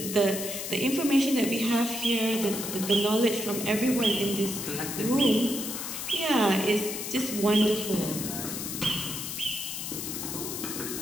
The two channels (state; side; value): noise; left; hiss, 5 dB below the sound